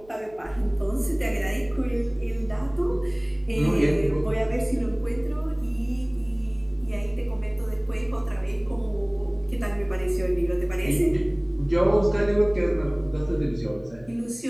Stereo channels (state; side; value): noise; right; hum, 25 dB below the sound